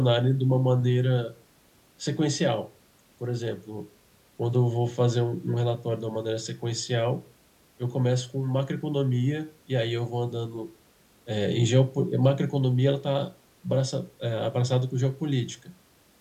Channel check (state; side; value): identical; both; correlation 1.00